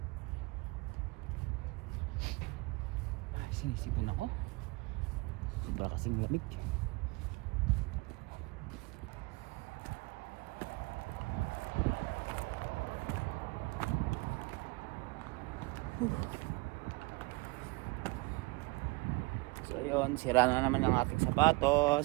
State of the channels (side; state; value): left; quieter; 24.7 dB